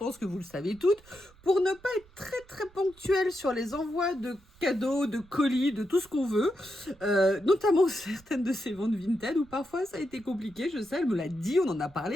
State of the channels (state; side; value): noise; right; rumble, 27 dB below the sound